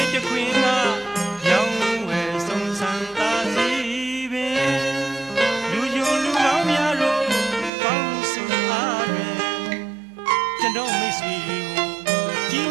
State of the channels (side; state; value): left; drops out; at 7.7 s